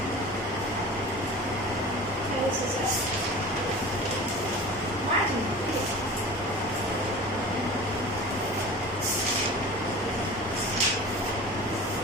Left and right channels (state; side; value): normal; both; correlation 0.37